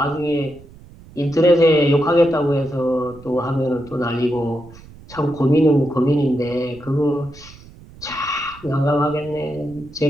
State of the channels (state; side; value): noise; right; rumble, 21 dB below the sound